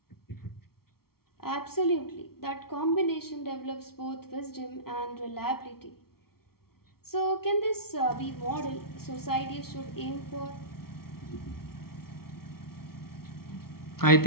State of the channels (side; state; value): right; late; 0.94 ms